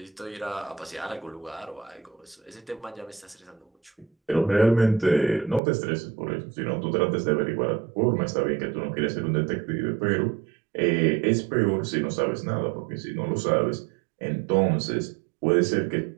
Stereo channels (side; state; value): left; drops out; at 5.6 s